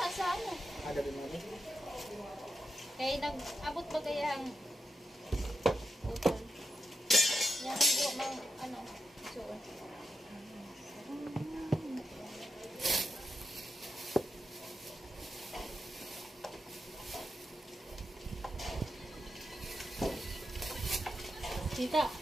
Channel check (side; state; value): both; normal; correlation 0.89